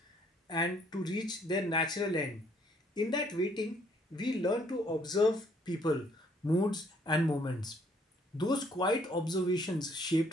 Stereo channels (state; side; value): normal; both; correlation 0.65